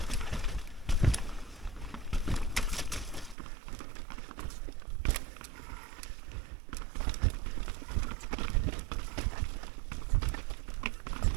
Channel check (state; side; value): drops out; left; at 3.4 s